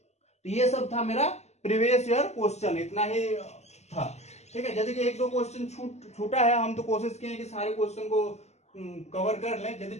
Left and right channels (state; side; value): late; right; 0.32 ms